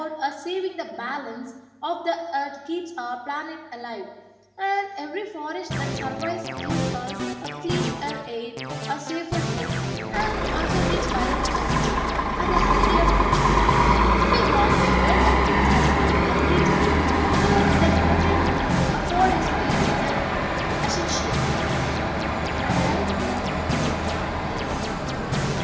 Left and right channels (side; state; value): both; identical; correlation 1.00